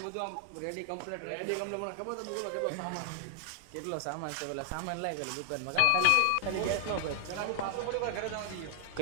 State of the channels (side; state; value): both; different; correlation 0.00